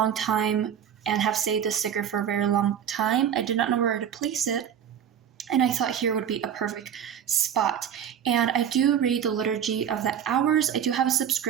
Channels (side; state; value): left; quieter; 8.9 dB